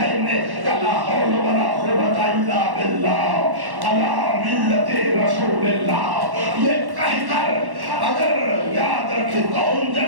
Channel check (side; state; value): left; late; 1.1 ms